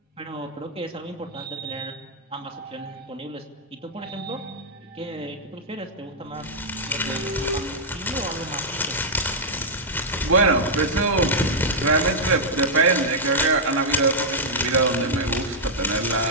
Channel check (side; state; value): both; normal; correlation -0.06